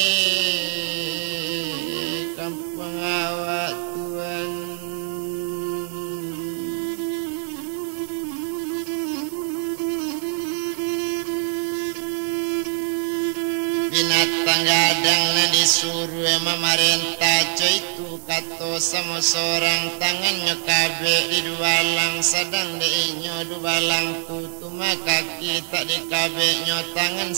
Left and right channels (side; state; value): left; silent; 63 dB below the other